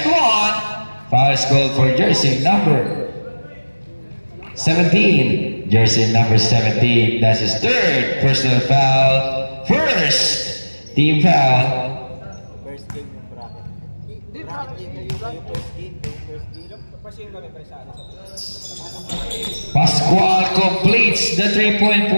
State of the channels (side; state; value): both; inverted; correlation -1.00